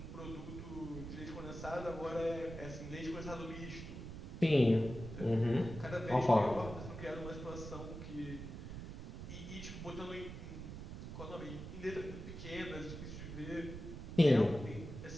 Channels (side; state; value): right; noise; rumble, 9 dB below the sound